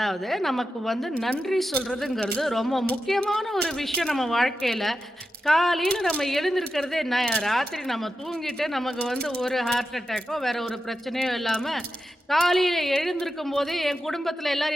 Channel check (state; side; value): normal; both; correlation 0.90